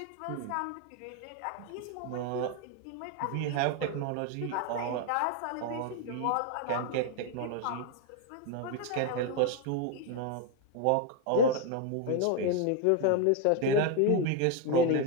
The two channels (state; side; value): different; both; correlation 0.01